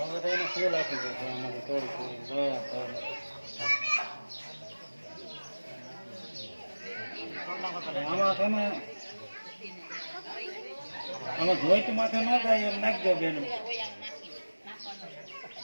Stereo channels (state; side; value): inverted; both; correlation -1.00